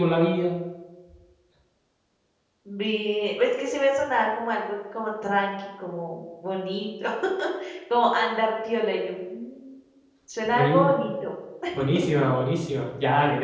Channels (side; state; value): both; identical; correlation 1.00